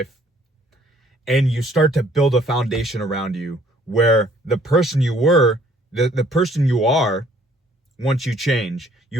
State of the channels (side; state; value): both; normal; correlation 0.61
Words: and you start to build a foundation around you where the person you were, the person you are, once you change,